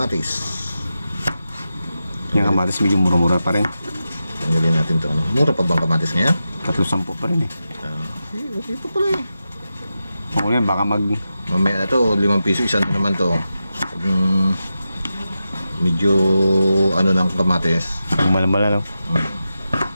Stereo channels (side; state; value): both; inverted; correlation -0.91